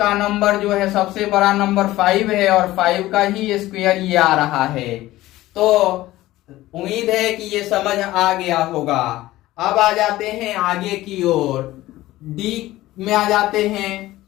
नंबर जो है सबसे बड़ा नंबर 5 है और 5 का ही स्क्वायर ये आ रहा है। तो उम्मीद है कि ये समझ आ गया होगा। अब आ जाते हैं आगे की ओर, डी में आ जाते हैं,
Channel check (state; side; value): quieter; right; 16.5 dB